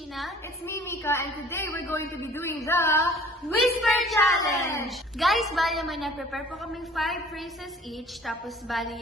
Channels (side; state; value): both; normal; correlation 0.50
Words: It's me, Mika, and today we're going to be doing the Whisper Challenge! Guys, bali naman na-prepare po kaming 5 phrases each. Tapos bali